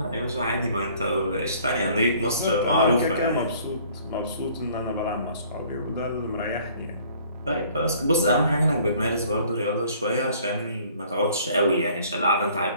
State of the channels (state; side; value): inverted; both; correlation -0.56